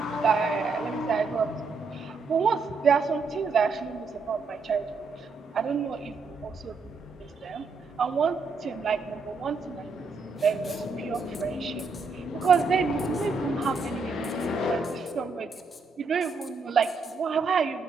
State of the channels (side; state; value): left; quieter; 4.3 dB